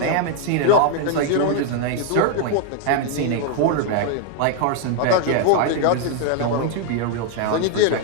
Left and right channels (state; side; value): different; both; correlation 0.00